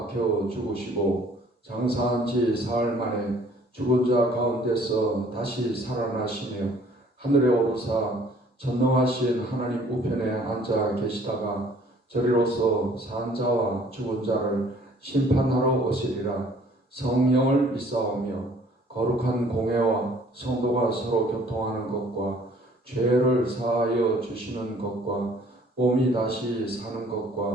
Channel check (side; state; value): both; normal; correlation 0.57